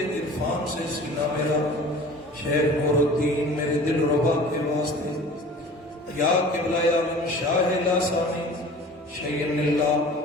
عرفان سے سینہ میرا شیخ نور الدین میرے دل ربا کے واسطے یا قبلہ عالم شاہ لاسانی شیئن اللہ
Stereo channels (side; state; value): both; normal; correlation 0.43